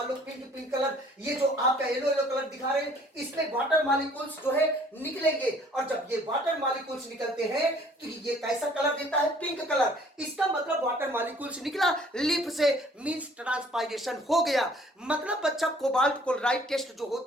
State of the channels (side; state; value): both; normal; correlation 0.57